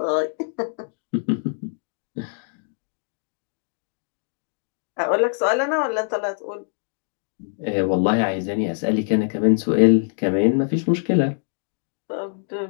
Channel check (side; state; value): right; silent; digital silence